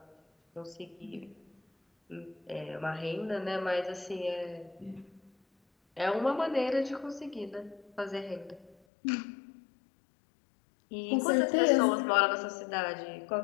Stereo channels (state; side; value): drops out; right; at 8.8 s